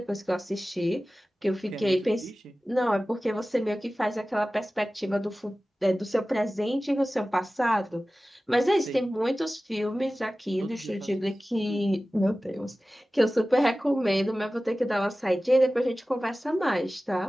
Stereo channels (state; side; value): normal; both; correlation 0.96